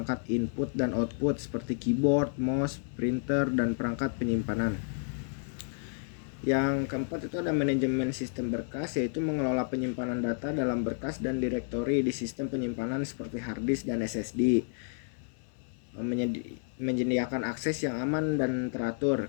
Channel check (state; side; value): silent; right; 57 dB below the other